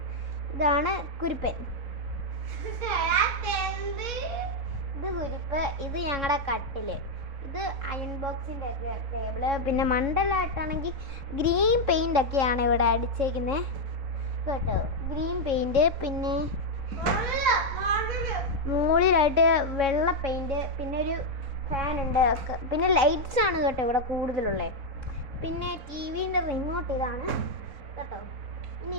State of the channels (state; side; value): late; left; 4.1 ms